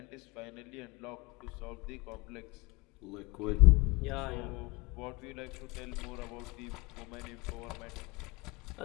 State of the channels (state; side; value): quieter; right; 24.8 dB